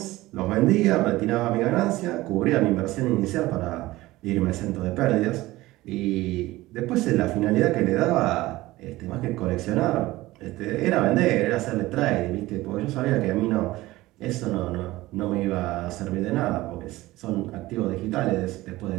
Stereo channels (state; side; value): quieter; left; 18.2 dB